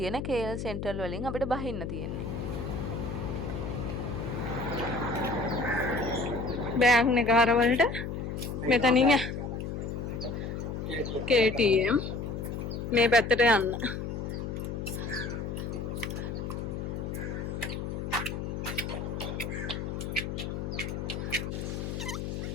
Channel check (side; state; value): left; noise; hum, 4 dB below the sound